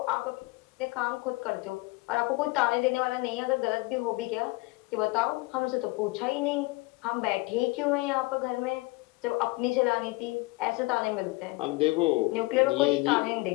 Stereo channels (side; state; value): right; quieter; 23.8 dB